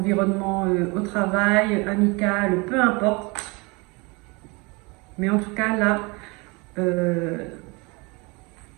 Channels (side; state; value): left; quieter; 27.8 dB